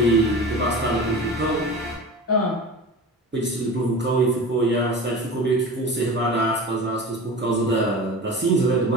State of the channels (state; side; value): normal; both; correlation 0.34